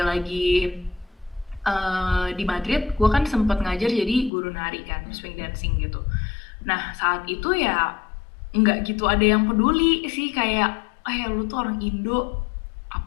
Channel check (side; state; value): right; drops out; at 4.3 s